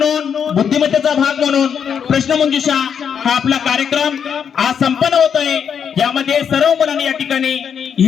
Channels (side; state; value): right; quieter; 7.5 dB